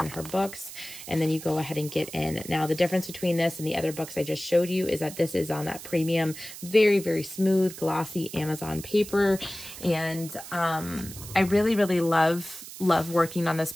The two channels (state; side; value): noise; right; hiss, 13 dB below the sound